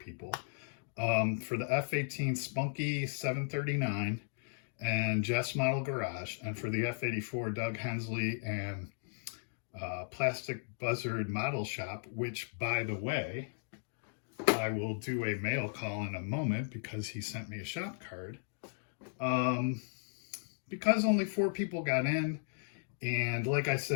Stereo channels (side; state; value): right; silent; digital silence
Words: for the F-18 Spunky 739 and Jeff's Model Garage, and for the F-84 Doug Hensley and Plastic Buzzard Model Shop, which, by the way, I will do a mail call in a moment because he sent me a shop card. Because only 4 people got in, and like I